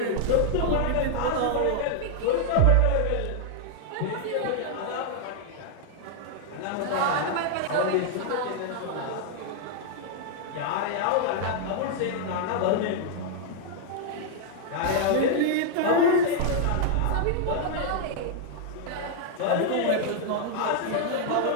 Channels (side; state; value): both; different; correlation 0.00